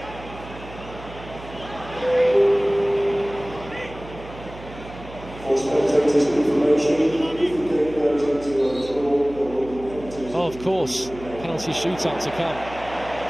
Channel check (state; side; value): noise; right; hum, 15 dB below the sound